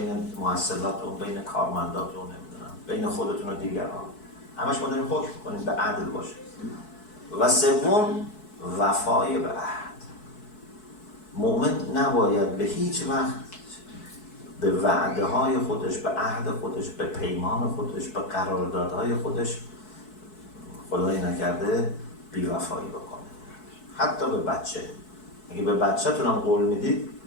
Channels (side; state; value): right; late; 4.6 ms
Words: محصلاتون، بین کارمنداتون، نمیدونم بین خودتون و دیگران، همش ما داریم حکم میکنیم به عدل باشه. و 3. وفای به عهد. مؤمن نباید به هیچ وقت به وعده های خودش، به عهد خودش، به پیمان خودش، به قراردادهای خودش، خدایی نکرده، بی‌وفایی بکنه. حتی به بچه. اگه به بچه‌تون هم قول میدید